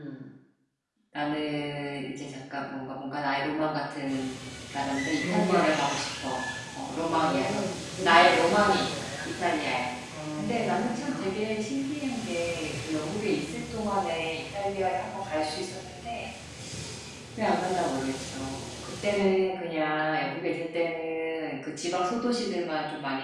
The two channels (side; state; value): both; identical; correlation 1.00